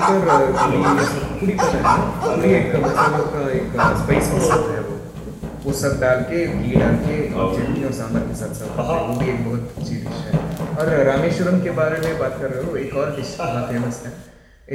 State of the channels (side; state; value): both; identical; correlation 1.00